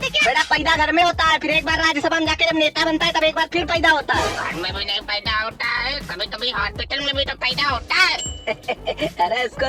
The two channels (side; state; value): both; identical; correlation 1.00